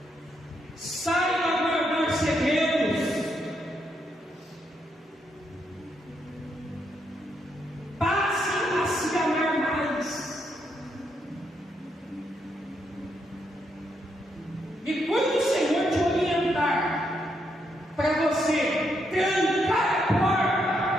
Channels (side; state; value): both; normal; correlation 0.78